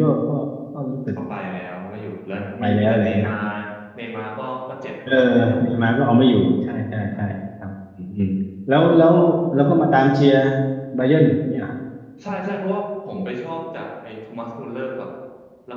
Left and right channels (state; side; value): identical; both; correlation 1.00